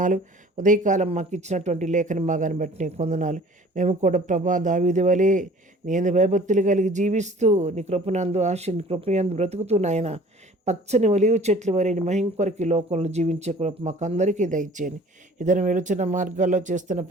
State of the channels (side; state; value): both; normal; correlation 0.49